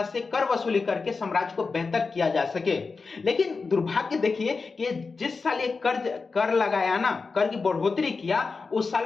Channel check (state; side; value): quieter; right; 4.5 dB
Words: से कर वसूली करके साम्राज्य को बेहतर किया जा सके। लेकिन दुर्भाग्य देखिए कि जिस साल ये कर लगाया ना, कर की बढ़ोतरी किया, उस